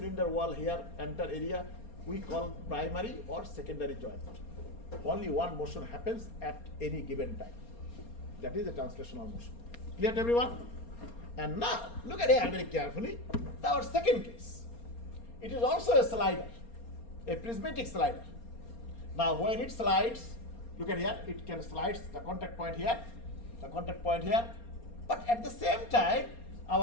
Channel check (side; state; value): right; late; 4.3 ms